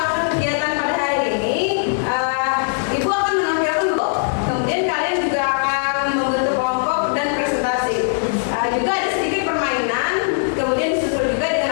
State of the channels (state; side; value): silent; right; digital silence